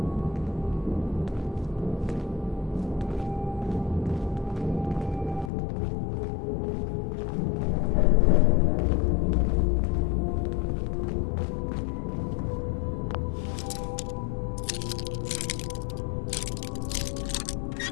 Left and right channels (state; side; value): drops out; right; at 5.5 s